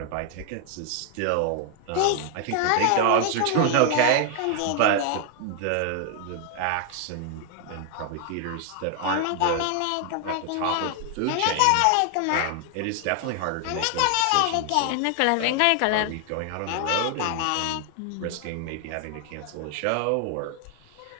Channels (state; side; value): different; both; correlation 0.00